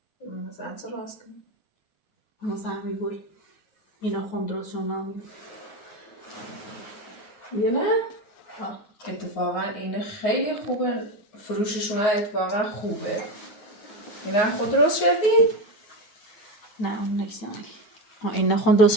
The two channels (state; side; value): late; right; 9.4 ms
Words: مثلا چه راست کنیم مثلا میگوی اینا خون درست شون نامی یه نه؟ اتفاقا اینه خیلی خوبه فروششون اتفاقا خوبه اینا خود درست شدی؟ نه اون نیستم اینا خون درست